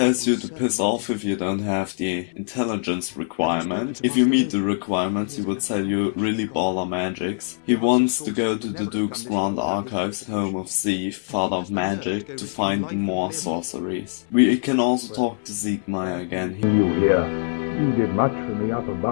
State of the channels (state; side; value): silent; right; digital silence